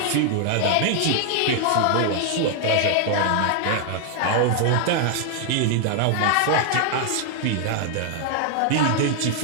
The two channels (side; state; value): both; different; correlation 0.00